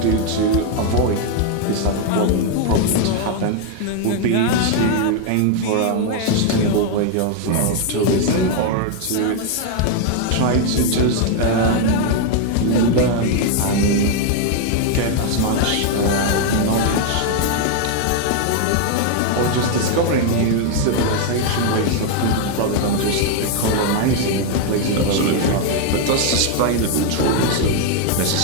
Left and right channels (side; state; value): both; different; correlation 0.00